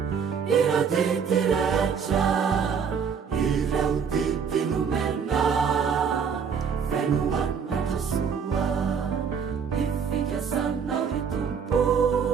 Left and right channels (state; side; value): quieter; left; 6.6 dB